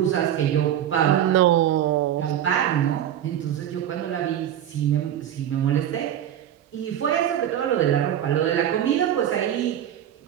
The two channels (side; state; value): left; quieter; 10.8 dB